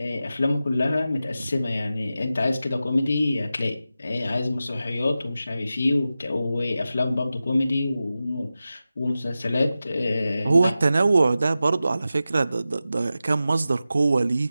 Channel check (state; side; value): inverted; both; correlation -0.93